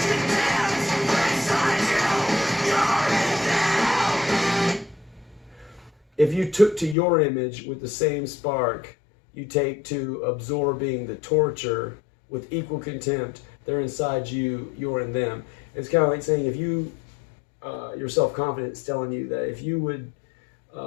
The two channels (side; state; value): right; drops out; at 7.0 s